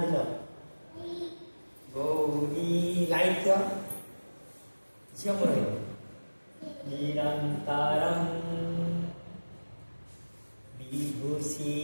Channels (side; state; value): both; inverted; correlation -1.00